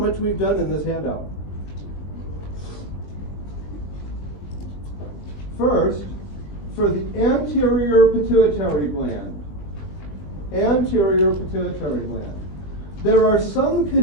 we've done in this handout. First, for the anterior pituitary gland. Anterior pituitary gland. There are some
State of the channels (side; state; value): right; late; 20 ms